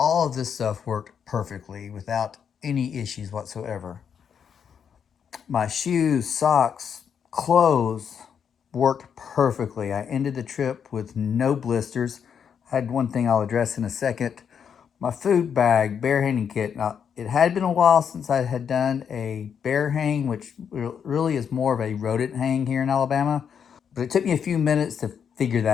of this stuff worked perfectly without any issues whatsoever. My shoes, socks, clothes worked perfectly. I ended the trip with no blisters. I had one thing I'll address in a second. My food bag, bear hanging kit. Now, it had been a while since I had done a bear hang, which really is more of a rodent hang here in Alabama. But it took me a few minutes to figure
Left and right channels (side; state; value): right; quieter; 7.5 dB